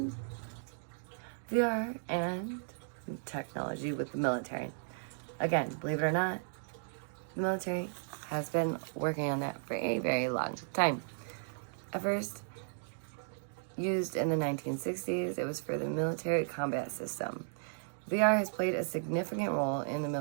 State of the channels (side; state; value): left; silent; digital silence